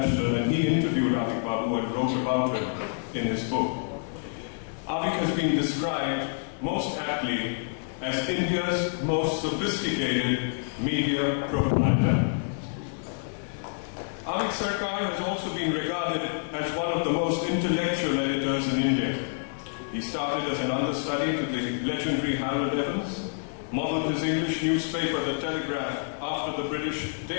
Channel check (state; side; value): silent; right; digital silence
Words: and he interviewed Avik Babu and wrote about him in his book. Avik has been described most aptly as India's most sophisticated media proprietor. Avik Sarkar has also been regarded as one of the most intellectual editors in India. He started as an understudy to the legendary Harold Evans, modeled his English newspaper, The Telegraph, after the British